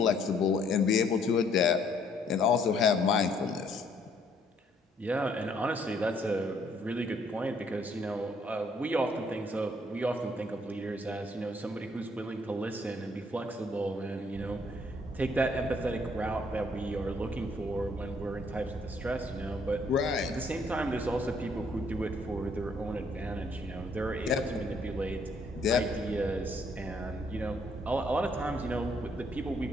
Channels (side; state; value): both; normal; correlation 0.66